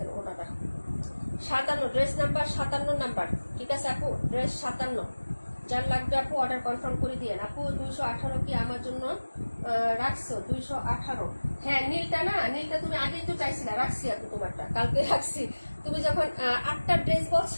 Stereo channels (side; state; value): both; inverted; correlation -1.00